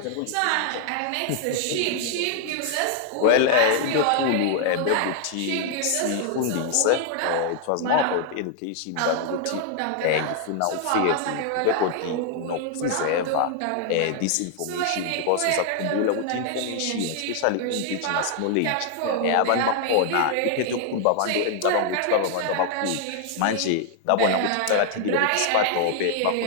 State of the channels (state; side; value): different; both; correlation 0.00